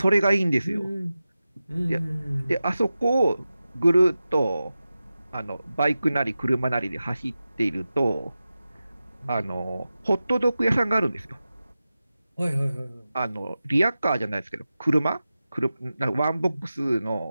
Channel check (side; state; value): both; inverted; correlation -0.94